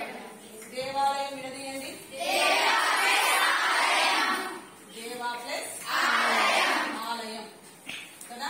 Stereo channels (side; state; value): both; identical; correlation 1.00